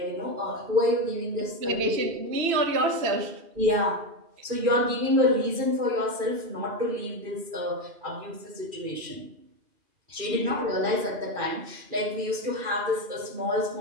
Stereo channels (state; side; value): late; left; 2.4 ms